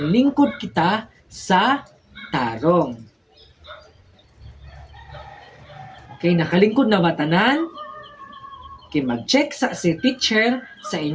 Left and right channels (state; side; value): identical; both; correlation 1.00